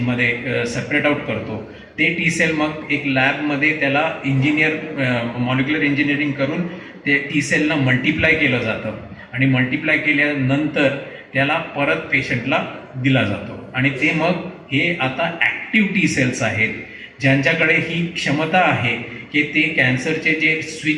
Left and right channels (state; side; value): identical; both; correlation 1.00